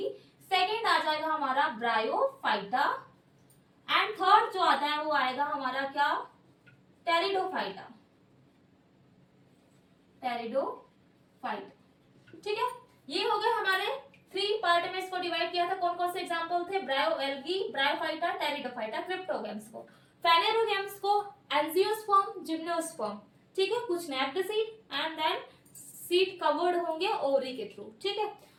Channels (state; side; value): identical; both; correlation 1.00